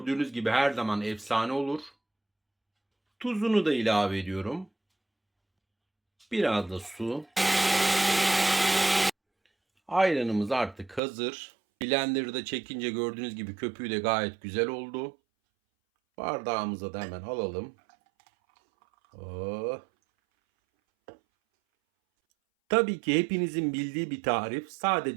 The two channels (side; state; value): left; drops out; at 11.0 s